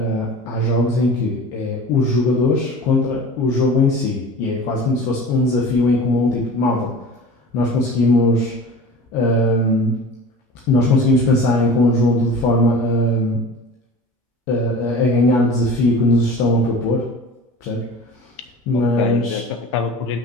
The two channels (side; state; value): both; normal; correlation 0.39